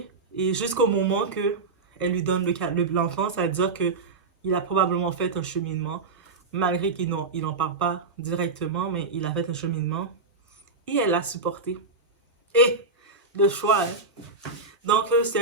Et jusqu'au moment qu'elle lui donne l'enfant, ça veut dire qu'il a probablement fait un cheminement. Malgré qu'il n'en parle pas directement, mais il a fait un cheminement. Et elle l'a supporté. Et le choix, hein? Donc,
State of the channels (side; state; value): left; quieter; 3.9 dB